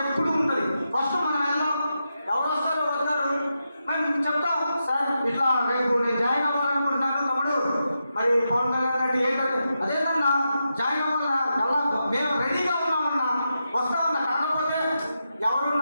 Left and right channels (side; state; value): both; inverted; correlation -0.87